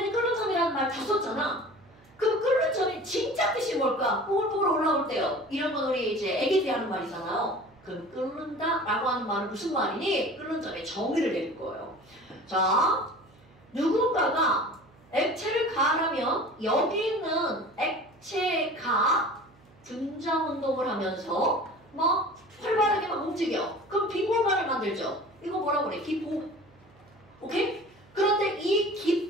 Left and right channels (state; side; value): noise; right; hum, 28 dB below the sound